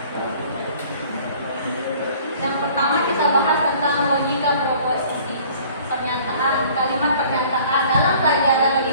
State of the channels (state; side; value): inverted; both; correlation -0.52